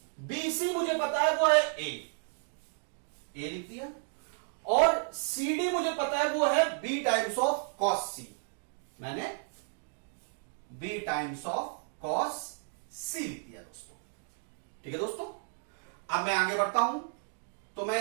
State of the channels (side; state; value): left; silent; 56 dB below the other